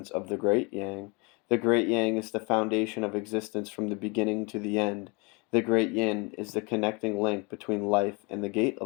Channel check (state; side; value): quieter; right; 29.4 dB